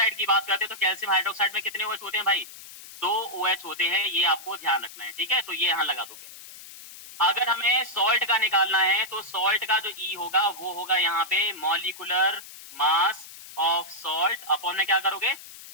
की बात करते हैं तो कैल्शियम हाइड्रोक्साइड में कितने OH होते हैं भाई? दो OH होते हैं। ये आपको ध्यान रखना है, ठीक है, तो ये यहाँ लगा दोगे। अगर हमें सॉल्ट का निकालना है तो सॉल्ट का जो E होगा वो होगा यहाँ पे molecular mass of salt, upon में क्या करोगे?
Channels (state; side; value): noise; left; hiss, 16 dB below the sound